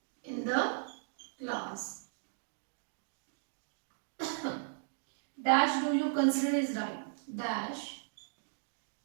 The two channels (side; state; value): left; silent; digital silence